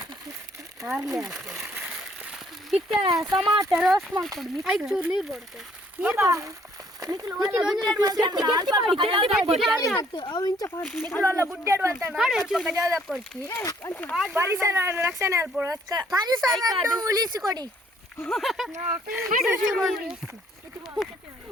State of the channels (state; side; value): normal; both; correlation 0.63